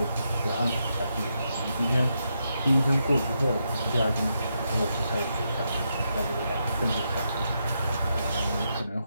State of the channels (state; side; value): inverted; both; correlation -0.82